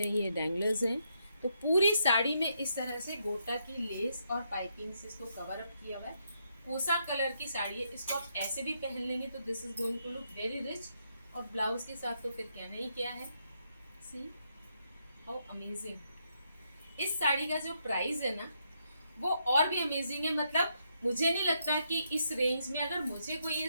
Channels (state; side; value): inverted; both; correlation -0.78